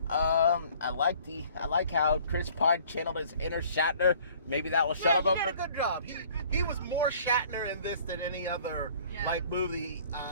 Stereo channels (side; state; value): both; inverted; correlation -0.54